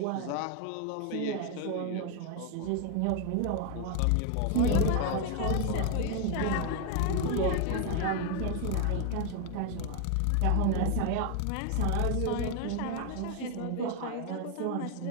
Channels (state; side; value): different; both; correlation 0.01